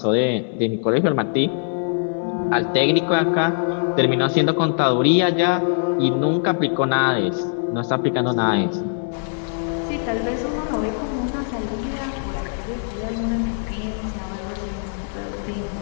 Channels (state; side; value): silent; right; digital silence